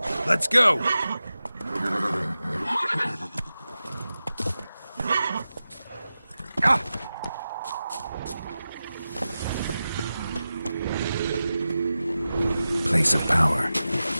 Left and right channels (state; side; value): inverted; both; correlation -0.94